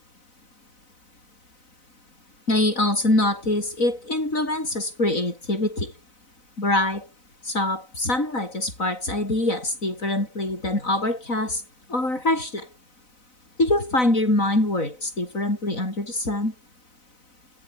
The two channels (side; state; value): right; late; 4.0 ms